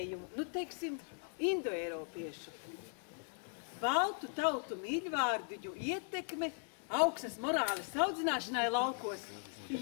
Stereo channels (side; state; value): right; silent; 52 dB below the other